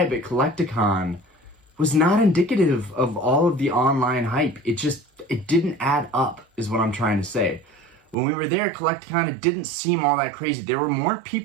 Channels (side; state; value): left; drops out; at 8.2 s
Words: at Collecticon was not indicative of all of the online hype. It didn't add up, is what I'm trying to say. When we were there at Collecticon, it didn't seem all that crazy. There were more